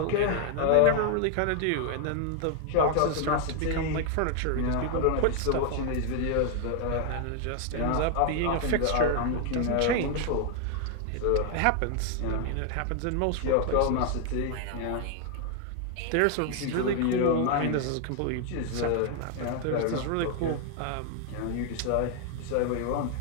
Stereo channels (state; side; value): different; both; correlation 0.00